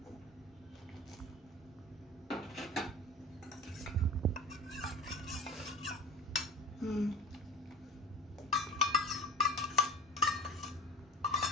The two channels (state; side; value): normal; both; correlation 0.31